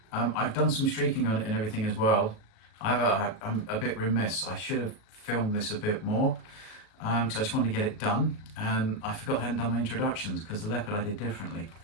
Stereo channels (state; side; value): late; right; 38 ms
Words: I've done some streaking on it and everything as well. I'm a bit remiss. I should have filmed this a bit more because I just wanted to get it done, and I forgot I hadn't done my introductions because the leopard I did differently.